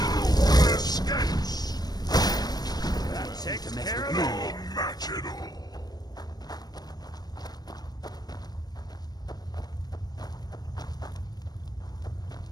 That takes care of it. Match it all.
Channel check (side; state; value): right; late; 0.19 ms